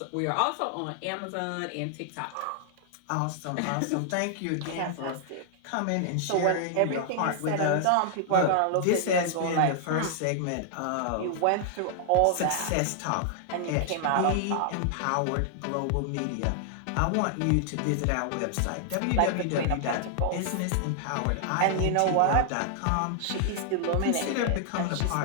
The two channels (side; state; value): both; different; correlation -0.01